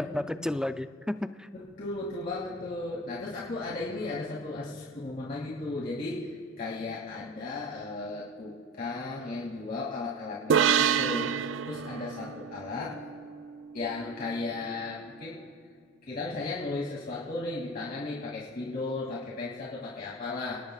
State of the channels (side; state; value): both; normal; correlation 0.31